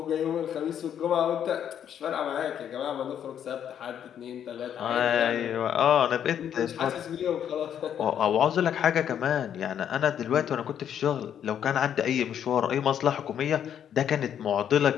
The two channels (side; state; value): right; quieter; 9.3 dB